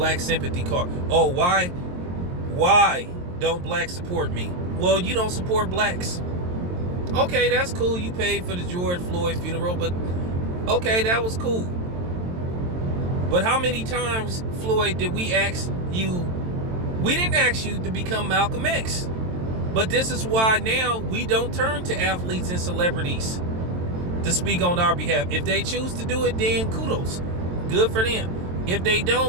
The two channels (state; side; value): late; left; 22 ms